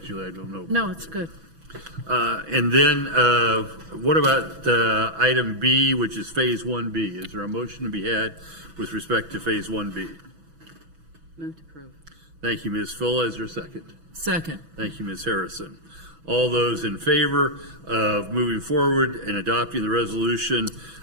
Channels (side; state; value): left; late; 6.1 ms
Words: Julie. I don't know. No, it's good. And then what about item B, which is phase 1B? Is there a motion to be had with respect to phase 1B? Move to approve. Thank you, Ms. Fulla. Is there a second? Second. Thank you, Ms. Harrison. All those in favor of moving forward and adopting the resolution